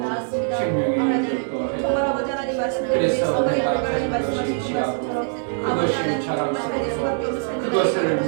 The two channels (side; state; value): left; silent; 64 dB below the other